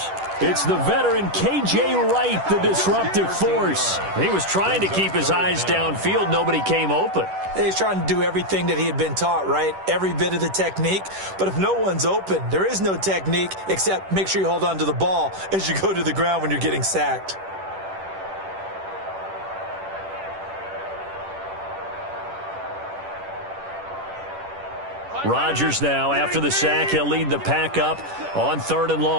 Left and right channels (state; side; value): late; left; 10 ms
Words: It's the veteran K.J. Wright, the disruptive force. He was trying to keep his eyes downfield. Nobody came open. He's trying to do everything that he had been taught, right? Every bit of the technique. But if no one's open, there is no technique except make sure you hold on to the ball as you go to the ground when you're getting sacked. Rodgers now, after the sack, he'll lead the pack up on 3rd and